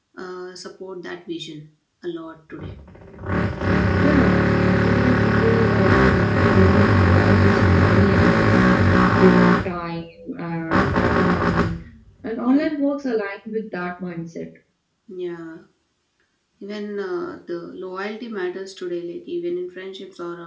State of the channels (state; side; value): identical; both; correlation 1.00